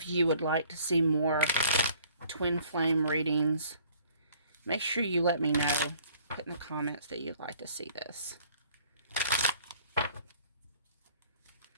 you would like to see more twin flame readings, make sure you let me know. Put in the comments that you'd like to see this.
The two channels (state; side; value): inverted; both; correlation -0.56